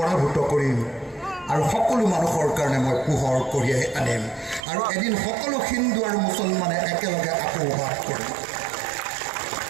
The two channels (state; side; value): drops out; left; at 4.7 s